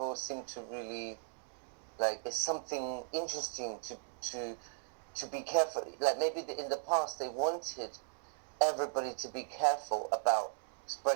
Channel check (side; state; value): left; silent; digital silence